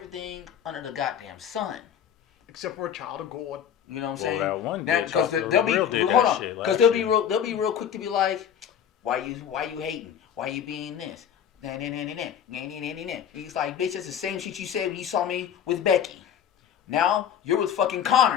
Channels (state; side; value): quieter; right; 8.9 dB